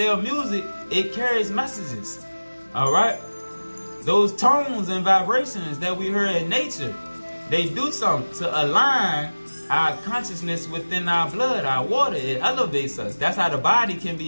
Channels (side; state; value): both; inverted; correlation -1.00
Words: music, it carries messages. Alright? Those tones and vibrations that we hear in nature, they do something to align our consciousness within our blood, our water. It elevates us. That's how the body can be